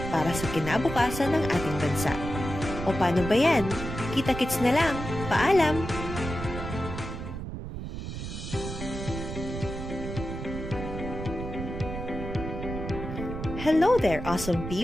para sa kinabukasan ng ating bansa. O paano ba yan? Kita-kits na lang. Paalam! Hello there, awesome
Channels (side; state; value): right; noise; rumble, 7 dB below the sound